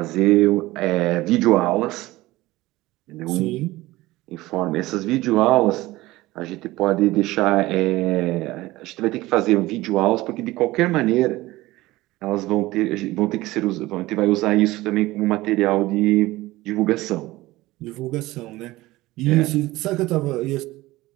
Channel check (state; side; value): quieter; left; 18.6 dB